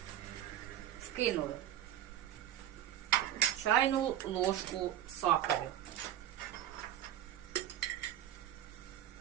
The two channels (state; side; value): quieter; left; 11.4 dB